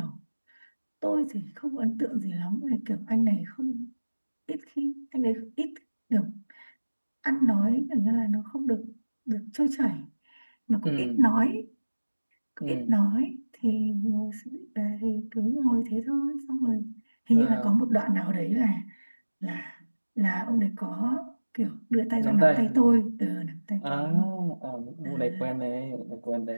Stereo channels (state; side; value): inverted; both; correlation -1.00